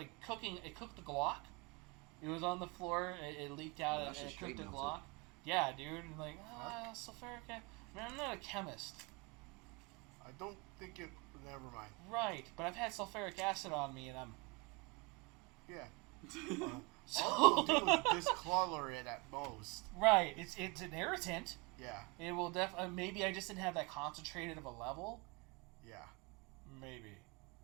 cooking. It cooked the Glock. It was on the floor. It leaked out, and it cooked the Glock. Yeah, dude. And sulfuric acid. Man, I'm not a chemist. I don't think it. Never mind. Right, but I've had sulfuric acid on me, and I'm. Yeah. So. All it'll do is discolor it at most. Right. It's an irritant. Yeah. It will maybe I just didn't have that concentrated of a level. Yeah. Maybe.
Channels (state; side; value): quieter; left; 27.4 dB